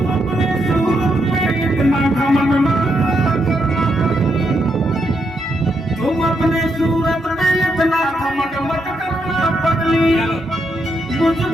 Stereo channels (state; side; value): normal; both; correlation 0.80